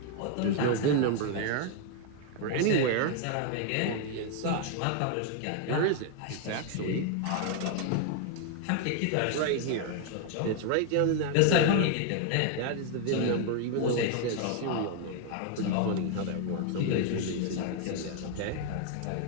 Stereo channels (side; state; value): both; different; correlation 0.00